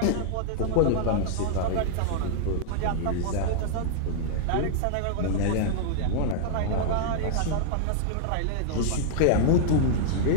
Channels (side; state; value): both; different; correlation -0.01